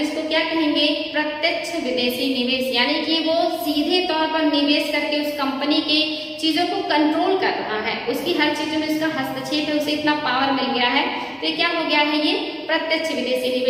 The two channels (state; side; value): identical; both; correlation 1.00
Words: क्या कहेंगे, प्रत्यक्ष विदेशी निवेश। यानी कि वो सीधे तौर पर निवेश करके उस कंपनी के चीजों को कंट्रोल कर रहा है, उसकी हर चीजों में उसका हस्तक्षेप है, उसे इतना पावर मिल गया है, तो ये क्या हो गया है, ये प्रत्यक्ष विदेशी